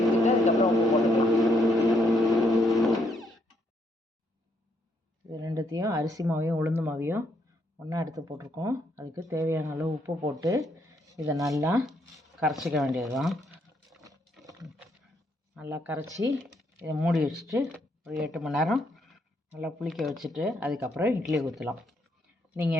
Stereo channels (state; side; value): normal; both; correlation 0.74